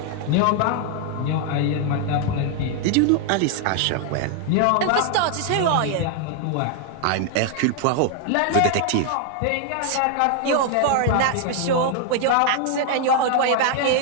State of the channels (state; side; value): different; both; correlation 0.00